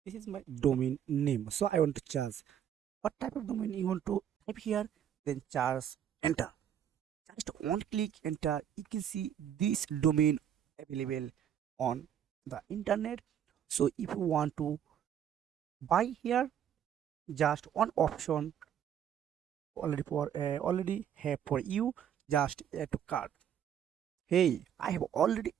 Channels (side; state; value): left; quieter; 9.5 dB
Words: This is my domain name. So I want to charge what type of domain you want to type here, then charge enter. Just one click enter, you can see this domain available on the internet. So if you want to buy here, just one option already have for you, just add to cart. Hey, I have already